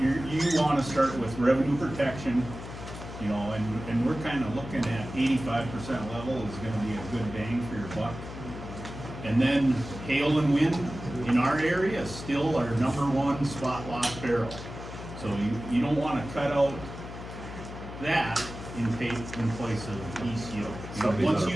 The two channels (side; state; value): left; noise; hum, 11 dB below the sound